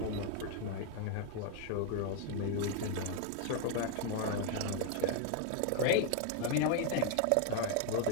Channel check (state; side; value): different; both; correlation 0.00